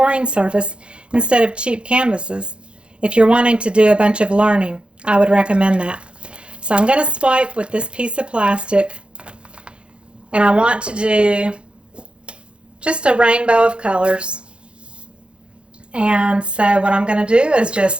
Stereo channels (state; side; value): late; left; 0.056 ms